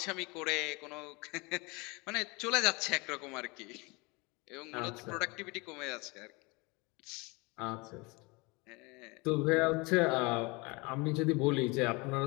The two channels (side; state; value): right; quieter; 26.6 dB